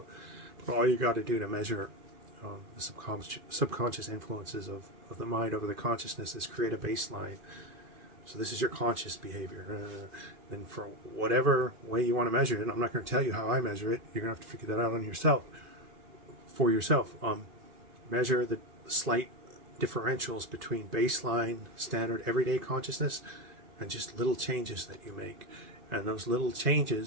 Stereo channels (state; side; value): late; left; 2.5 ms